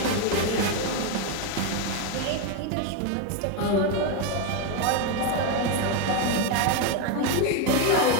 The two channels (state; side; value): different; both; correlation 0.02